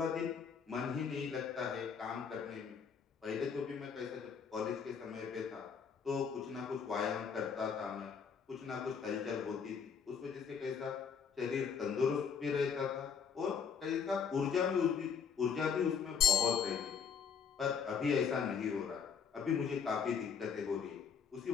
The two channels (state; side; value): quieter; right; 6.5 dB